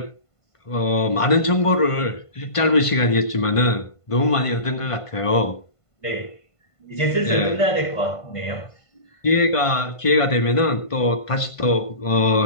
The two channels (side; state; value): right; late; 1.5 ms